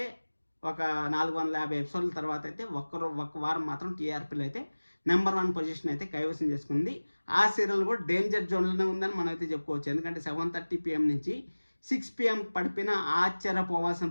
ఒక 450 ఎపిసోడ్ల తర్వాత అయితే ఒక్క వారం మాత్రం టీఆర్పీలో అయితే నెంబర్ 1 పొజిషన్ అయితే కైవసం చేసుకుంది. ఆ సీరియల్ కూడా డేంజర్ జోన్లోనే ఉందని మనం అయితే చెప్పుకోవచ్చు. ఎందుకంటే 7:30 PM నుంచి 6 PM పడిపోయినా ఆశ్చర్యపోవాల్సిన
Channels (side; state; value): both; inverted; correlation -1.00